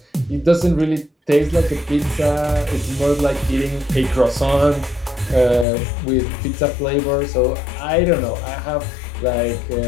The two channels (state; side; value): drops out; right; at 5.7 s